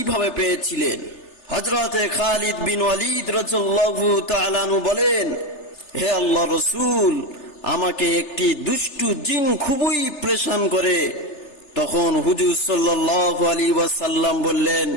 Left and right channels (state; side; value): late; right; 3.3 ms